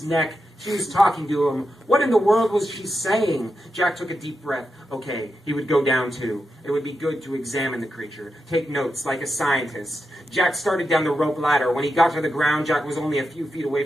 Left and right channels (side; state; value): both; normal; correlation 0.87